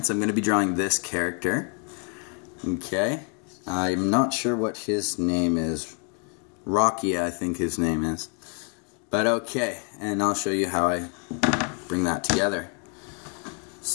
I'm going to be drawing this character. Okay, I'm not sure what his name is. Rocky, I think his name is. But okay, and I'll show you how I bring that together.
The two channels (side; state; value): right; quieter; 37.2 dB